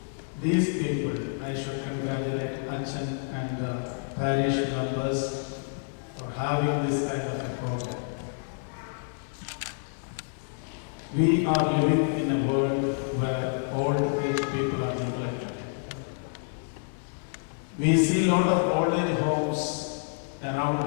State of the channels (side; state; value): right; silent; 59 dB below the other